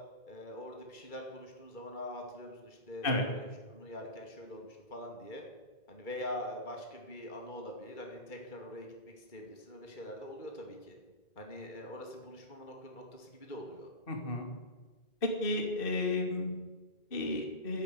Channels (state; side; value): late; right; 2.3 ms